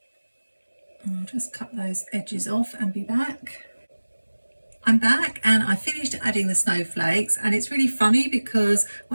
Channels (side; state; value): both; inverted; correlation -1.00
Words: I'll just cut those edges off and be back. I'm back and I finished adding the snowflakes, and it's really funny because